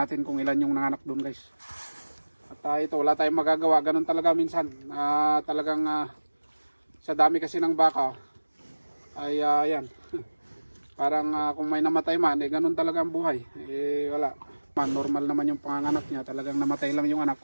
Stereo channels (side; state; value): both; inverted; correlation -1.00